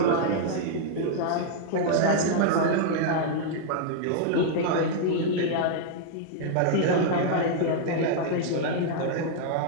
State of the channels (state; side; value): different; both; correlation -0.01